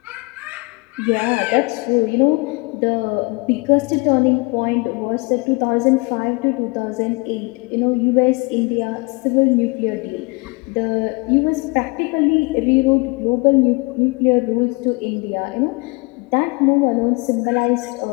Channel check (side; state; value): right; quieter; 28.4 dB